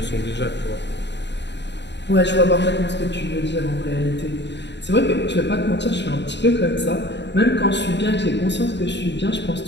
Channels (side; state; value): right; late; 0.51 ms